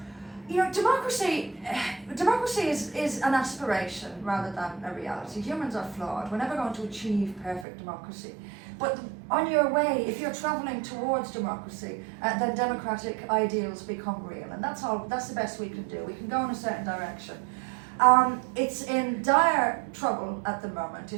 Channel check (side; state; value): left; drops out; at 7.7 s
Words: Democracy is an aspiration rather than a reality. Humans are flawed. We're never going to achieve perfect democracy. But on your way, if you're travelling towards democracy, then democratic ideals become real. And that's the best we can do. We can go in a certain direction. It's in dire trouble at the moment.